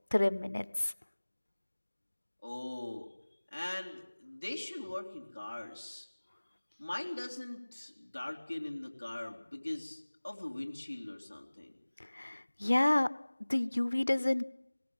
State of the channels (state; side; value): inverted; both; correlation -1.00